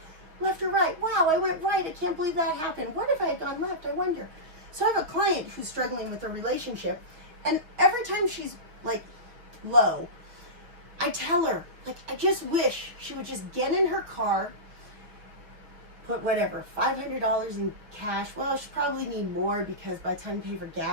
left or right. Wow, I went right. I can't believe that happened. What if I had gone left? I wonder. So I have a client who's struggling with a relationship. And every time she's like low, I tell her, like, I just wish she would just get in her car, put whatever, $500 in cash. Well, she'll probably need more because by the time you pay for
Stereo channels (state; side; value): late; left; 6.0 ms